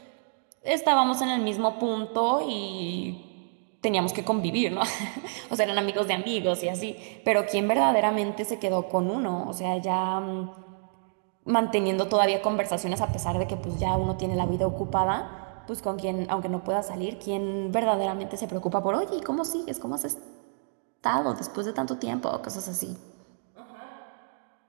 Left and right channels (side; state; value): left; silent; digital silence